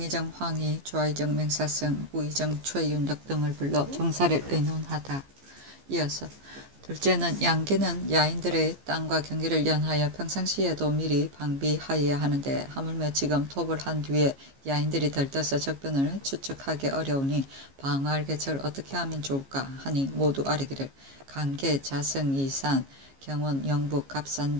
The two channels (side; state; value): left; late; 15 ms